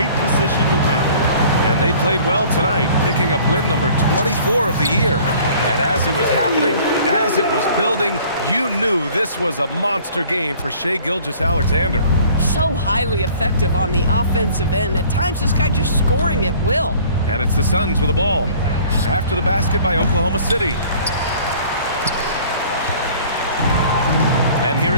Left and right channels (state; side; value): inverted; both; correlation -0.51